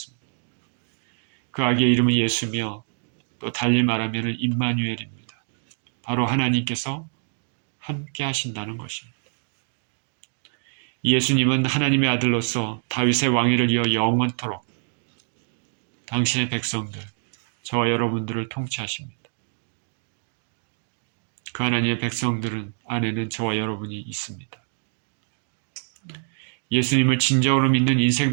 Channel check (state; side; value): silent; left; 61 dB below the other